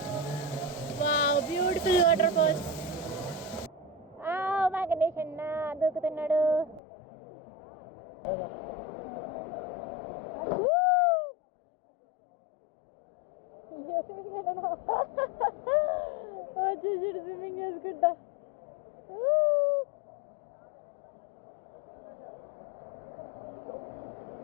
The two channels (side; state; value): right; drops out; at 6.8 s